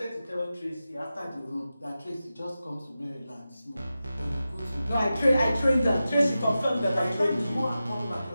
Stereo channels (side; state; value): both; inverted; correlation -0.93